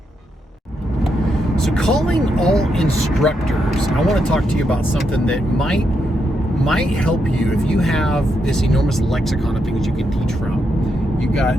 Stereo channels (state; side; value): normal; both; correlation 0.81